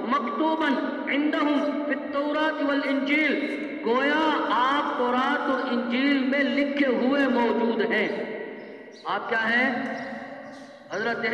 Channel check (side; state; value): both; identical; correlation 1.00